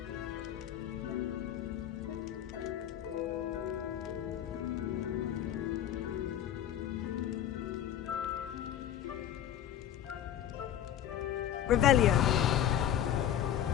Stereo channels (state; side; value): quieter; right; 10.8 dB